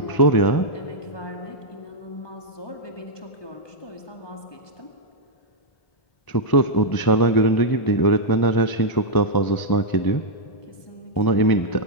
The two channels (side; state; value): right; late; 1.0 ms